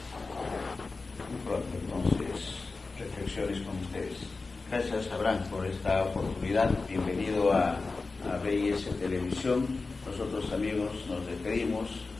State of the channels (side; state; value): right; quieter; 3.9 dB